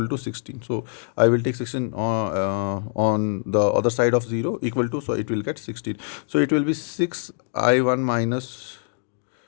16. So I will take 16 on the other side of 0 equal to, so it will get 16. So it will be 6 I1 minus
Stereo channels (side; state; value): right; silent; digital silence